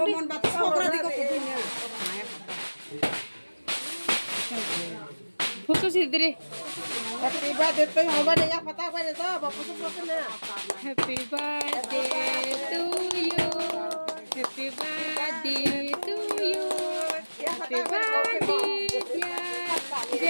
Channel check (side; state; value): both; inverted; correlation -1.00